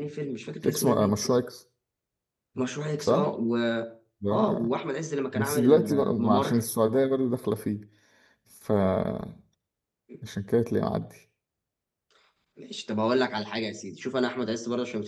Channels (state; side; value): identical; both; correlation 1.00